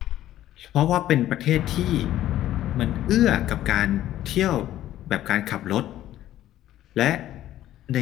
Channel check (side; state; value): right; quieter; 13.2 dB